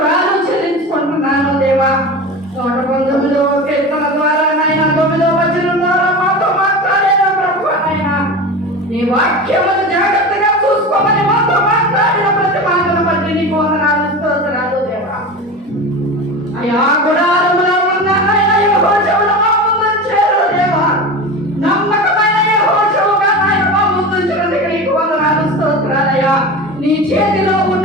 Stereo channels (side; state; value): both; normal; correlation 0.29